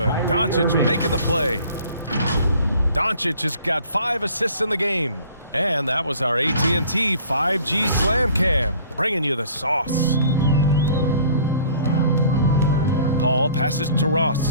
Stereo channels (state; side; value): inverted; both; correlation -0.51